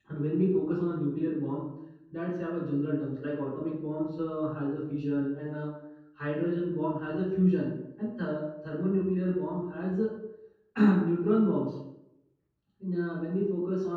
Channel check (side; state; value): both; identical; correlation 1.00